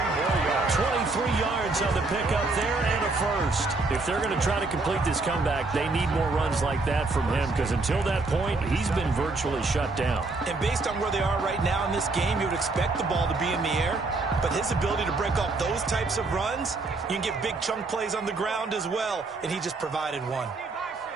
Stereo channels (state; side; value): quieter; left; 3.5 dB